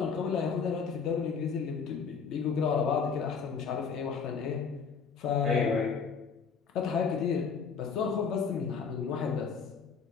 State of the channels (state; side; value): quieter; right; 5.9 dB